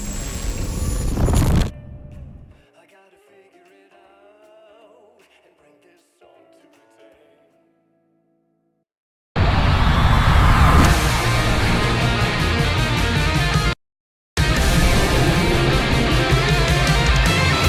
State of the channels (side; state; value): both; identical; correlation 1.00